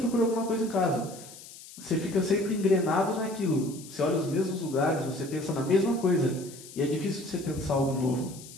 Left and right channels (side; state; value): left; noise; hiss, 17 dB below the sound